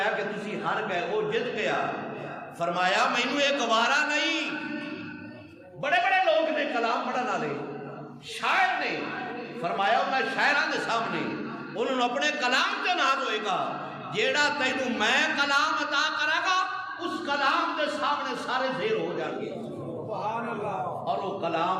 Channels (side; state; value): both; identical; correlation 1.00